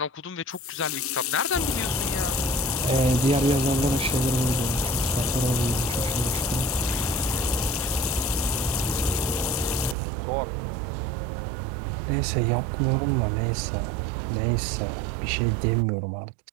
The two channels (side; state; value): left; drops out; at 10.0 s